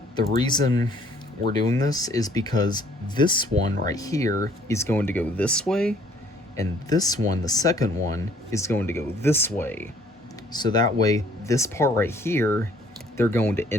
The reason we're doing this is because this one right here is going to go this way, and this one, the second one, is going to go this way. So that way, this part right here, they're going to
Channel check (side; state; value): both; normal; correlation 0.60